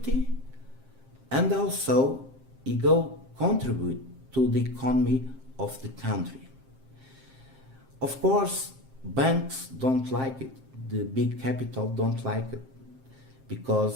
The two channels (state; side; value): late; left; 7.6 ms